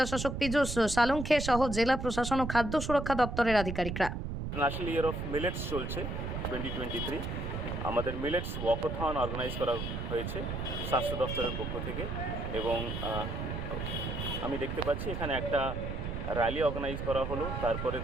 শাসক পীযূষ সালুঙ্খে সহ জেলা প্রশাসন ও খাদ্য সুরক্ষা দপ্তরের আধিকারিকরা। ন্যাশনাল ইয়ার অফ মিলেটস চলছে 2023। আমাদের মিলেটস ওয়াকাথন অর্গানাইজ করা হয়েছে স্বাস্থ্য দপ্তরের পক্ষ থেকে, এবং আমি দেখতে পাচ্ছি এখানে একটা র্যালি অর্গানাইজ করা হলো। তারপরে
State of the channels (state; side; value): noise; right; rumble, 4 dB below the sound